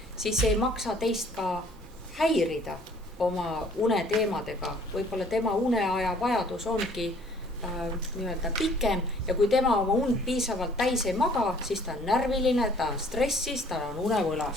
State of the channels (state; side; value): normal; both; correlation 0.57